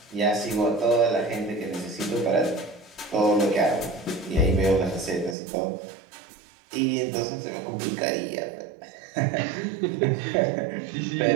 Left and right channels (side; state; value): left; drops out; at 5.4 s